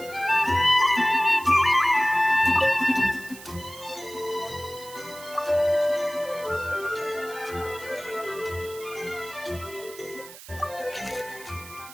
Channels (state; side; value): noise; right; hiss, 17 dB below the sound